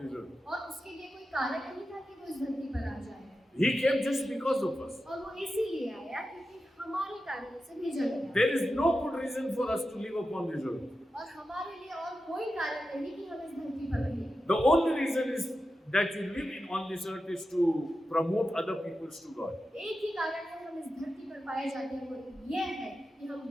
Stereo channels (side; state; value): both; normal; correlation 0.91